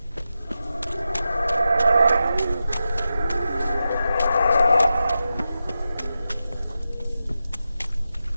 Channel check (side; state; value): both; inverted; correlation -0.90